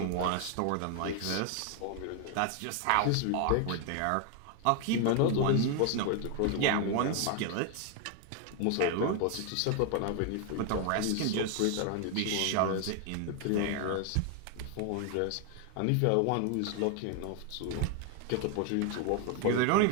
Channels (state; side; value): different; both; correlation 0.00